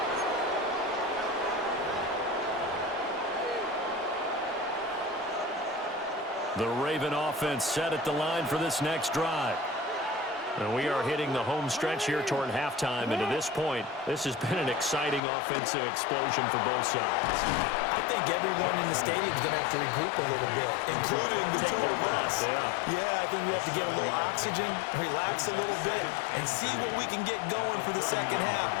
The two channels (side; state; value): right; drops out; at 15.2 s